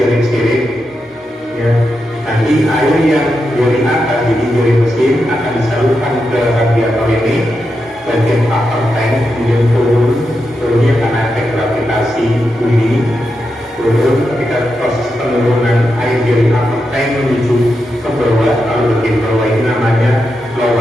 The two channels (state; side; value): normal; both; correlation 0.87